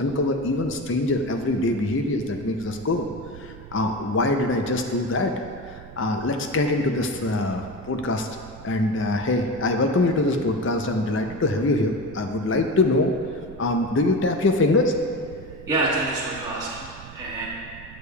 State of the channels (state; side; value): noise; right; rumble, 17 dB below the sound